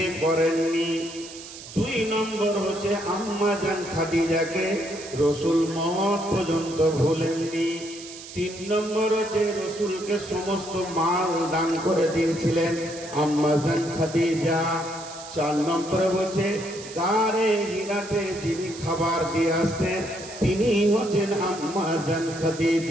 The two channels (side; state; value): right; noise; hiss, 14 dB below the sound